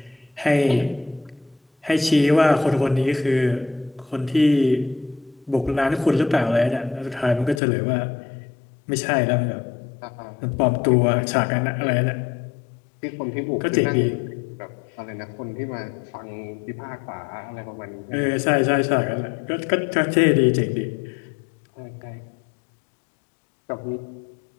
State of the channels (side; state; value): right; drops out; at 7.6 s